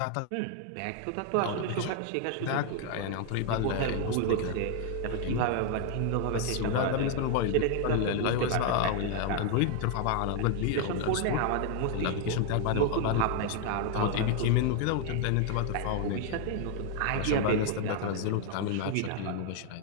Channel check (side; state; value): both; different; correlation 0.00